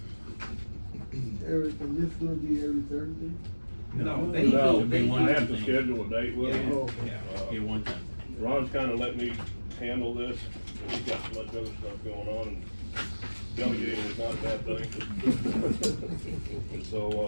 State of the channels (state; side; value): inverted; both; correlation -1.00